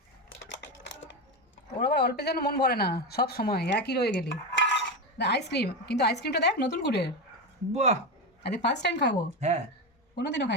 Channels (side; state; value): both; normal; correlation 0.15